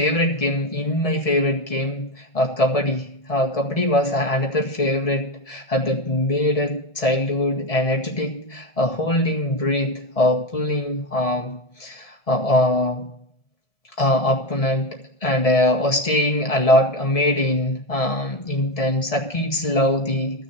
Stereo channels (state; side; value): late; right; 1.7 ms